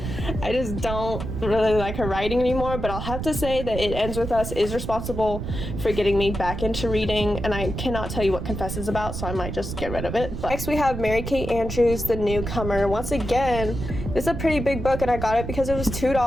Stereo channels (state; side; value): noise; right; rumble, 6 dB below the sound